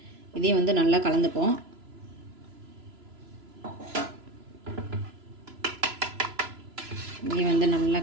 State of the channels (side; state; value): left; late; 3.0 ms